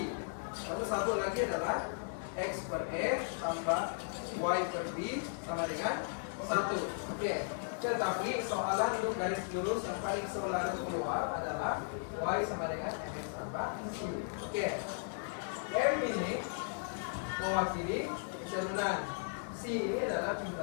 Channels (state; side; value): silent; right; 54 dB below the other